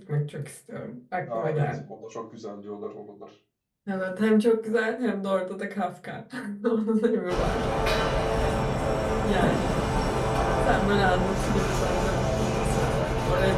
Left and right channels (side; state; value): both; identical; correlation 1.00